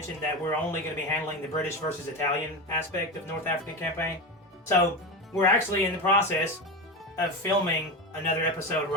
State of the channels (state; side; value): normal; both; correlation 0.20